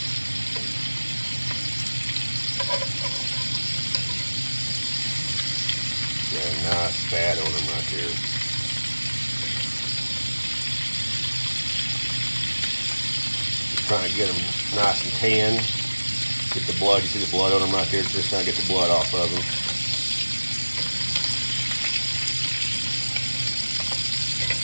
Yeah, nice fat on them right there. Trying to get them nice and tan. Get the blood. You see the blood on them right there? Just trying to get the blood off of them.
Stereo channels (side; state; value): both; inverted; correlation -1.00